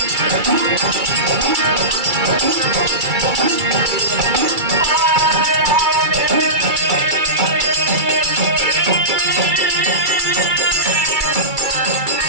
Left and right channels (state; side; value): late; left; 2.3 ms